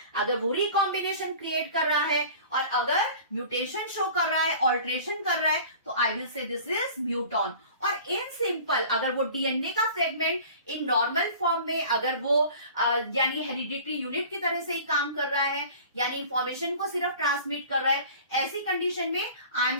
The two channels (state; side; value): inverted; both; correlation -0.43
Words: अगर वो रिकॉम्बिनेशन क्रिएट कर रहा है और अगर म्यूटेशन शो कर रहा है, ऑल्ट्रेशन कर रहा है, तो I will say this is muton. और इन सिंपल अगर वो डीएनए का फ्रेगमेंट इन नॉर्मल फॉर्म में अगर वो यानी हेरिडिटरी यूनिट की तरह से ही काम कर रहा है, यानी इंफॉर्मेशन को सिर्फ ट्रांसमिट कर रहा है, ऐसी कंडीशन में I am